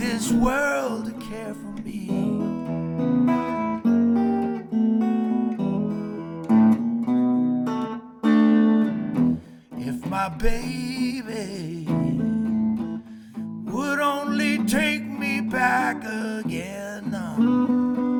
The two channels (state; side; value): identical; both; correlation 1.00